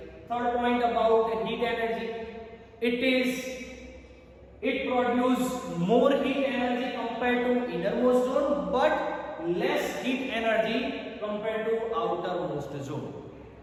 Third point about heat energy, it produce more heat energy compared compared to innermost zone, but less heat energy compared to outermost zone.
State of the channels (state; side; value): identical; both; correlation 1.00